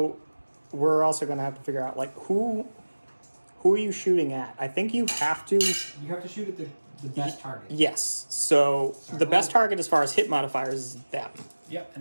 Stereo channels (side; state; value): both; inverted; correlation -1.00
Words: we're also going to have to figure out, like, who are you shooting at? I think you have to... You have to shoot at the best target. Yes. So Sorry, the best what? target as far as hit modifiers is them. Yep,